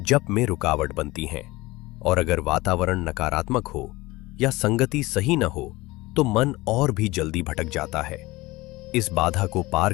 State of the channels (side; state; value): right; quieter; 20.4 dB